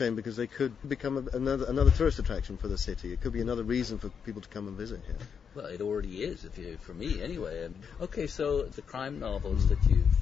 because they could become another tourist attraction for the city. It could be another reason for people to come and visit here. Well, it already is, for me anyway. Okay, so the crime novels that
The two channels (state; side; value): quieter; right; 6.8 dB